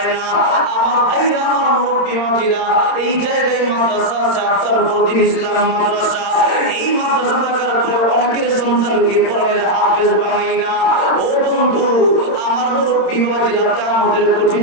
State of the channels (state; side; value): late; right; 26 ms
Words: না। আমার ভাইরা আমার মুরব্বী মহিলা এই জায়গায় মাদ্রাসা আছে, আপনার প্রতিদিন ইসলাম মাদ্রাসা। এই মাদ্রাসা থাকার পরে অনেকের সন্তানকে কোরআনের হাফেজ বানাই না। ও বন্ধু আমার মুরব্বী মহিলা আমাদের